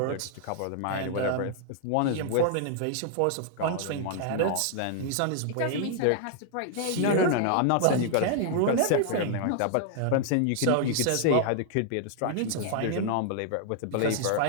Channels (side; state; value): both; different; correlation 0.00